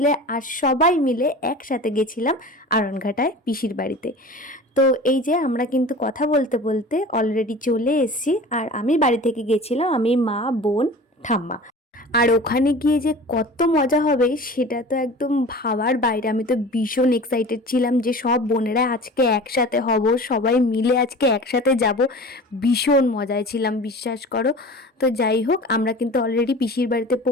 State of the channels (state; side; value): normal; both; correlation 0.38